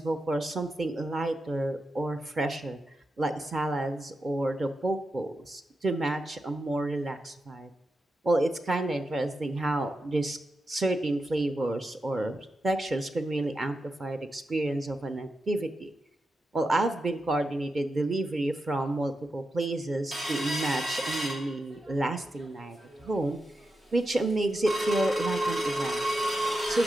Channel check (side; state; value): both; normal; correlation 0.89